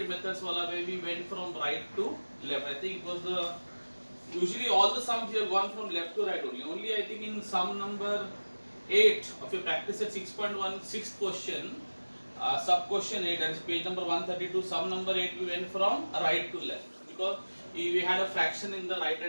methods wala where we went from right to left. I think it was the usually all the sums we have gone from left to right only. Only I think in sum number 8 of your practice at 6.1 sixth question, sub question 8, that is page number 132, sum number 8 we went from right to left because we had a fraction in the right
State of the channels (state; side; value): inverted; both; correlation -1.00